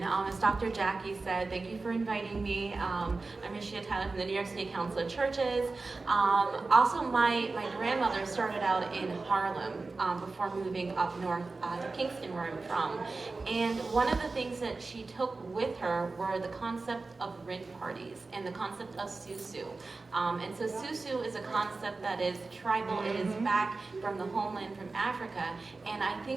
As Dr. Jackie said, thank you for inviting me. I'm Rashida Tyler from the New York State Council of Churches. Also, my grandmother started out in Harlem before moving up north to Kingston, where I'm from. And one of the things that she took with her were the concept of rent parties and the concept of susu. And so susu is a concept that is tribal. It is back from the homeland from Africa. And I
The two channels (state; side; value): quieter; left; 3.7 dB